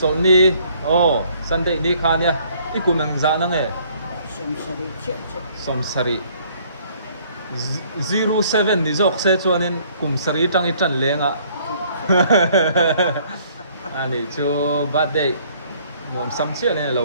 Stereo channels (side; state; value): both; inverted; correlation -0.61